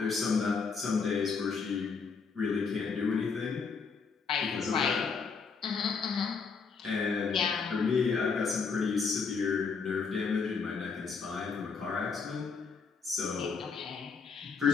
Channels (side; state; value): right; quieter; 5.3 dB